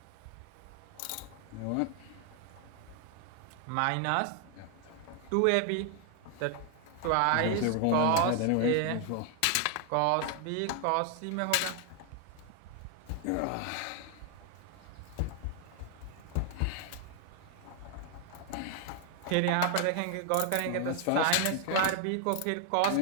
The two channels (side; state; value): both; different; correlation 0.00